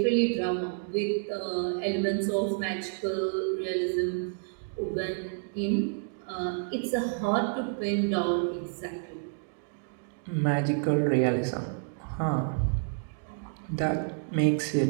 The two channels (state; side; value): silent; left; digital silence